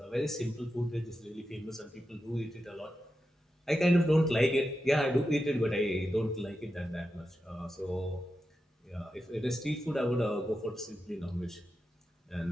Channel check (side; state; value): both; normal; correlation 0.89